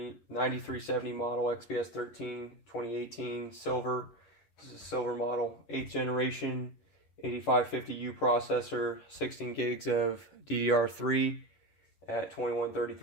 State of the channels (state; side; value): late; right; 10 ms